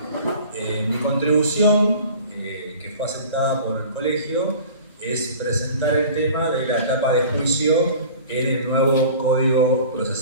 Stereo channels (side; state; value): both; inverted; correlation -0.42